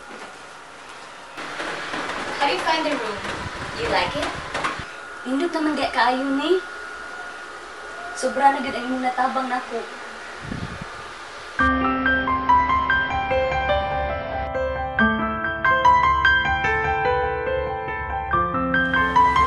How do you find the room? Do you like it? Indot naman gaya kaayo ni. Sobra na gud ang imong natabang nako.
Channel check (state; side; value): identical; both; correlation 1.00